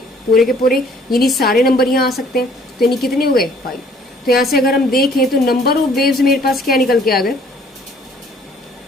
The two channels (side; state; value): both; normal; correlation 0.59